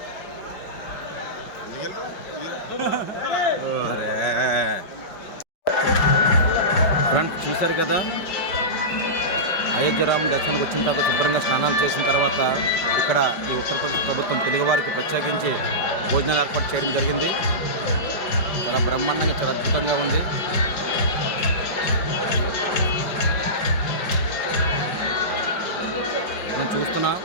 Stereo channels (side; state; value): right; late; 5.3 ms